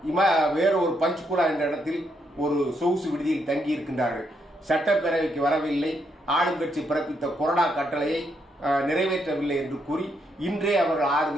வேறொரு பஞ்ச்குலா என்ற இடத்தில் ஒரு சொகுசு விடுதியில் தங்கி இருக்கின்றார்கள். சட்டப்பேரவைக்கு வரவில்லை, ஆளுங்கட்சி பிறப்பித்த கொறடா கட்டளையை நிறைவேற்றவில்லை என்று கூறி இன்றே அவர்கள் 6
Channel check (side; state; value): both; normal; correlation 0.77